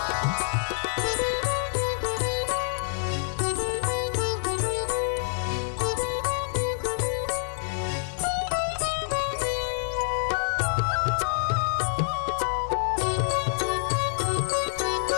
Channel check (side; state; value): right; silent; digital silence